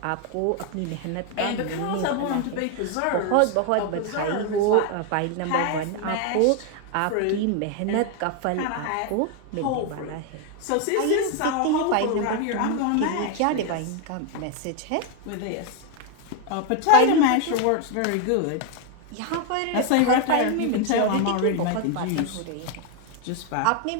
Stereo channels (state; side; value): different; both; correlation 0.01